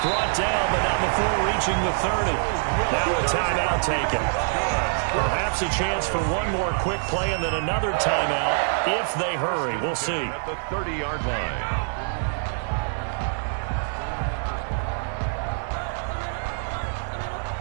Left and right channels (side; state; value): left; silent; 62 dB below the other